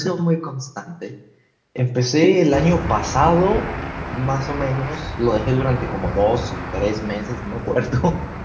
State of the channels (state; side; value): identical; both; correlation 1.00